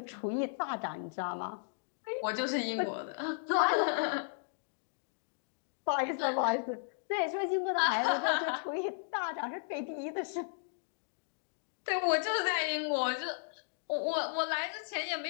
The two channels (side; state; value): right; silent; digital silence